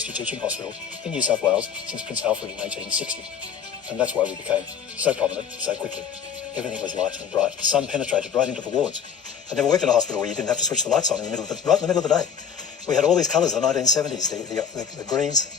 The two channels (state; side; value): quieter; right; 7.4 dB